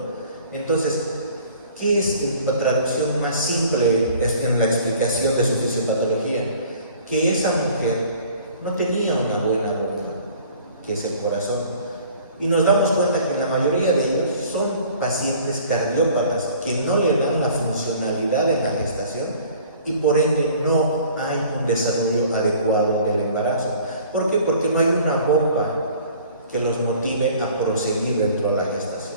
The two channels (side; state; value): both; inverted; correlation -0.51